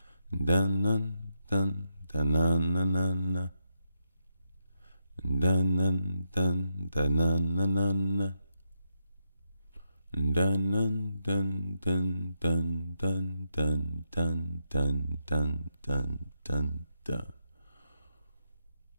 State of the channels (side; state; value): both; inverted; correlation -0.84